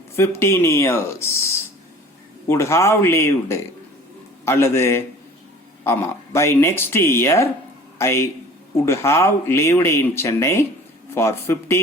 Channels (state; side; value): normal; both; correlation 0.46